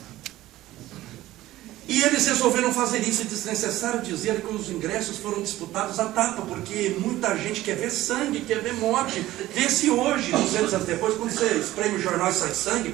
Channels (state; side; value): quieter; left; 15.8 dB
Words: E eles resolveram fazer isso, e desnecessário dizer que os ingressos foram disputados à tapa, porque muita gente quer ver sangue, quer ver morte. Vê-se hoje, 200 anos depois, quando você espreme o jornal e sai sangue,